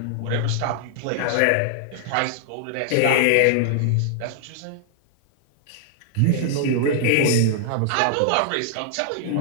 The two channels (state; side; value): different; both; correlation 0.00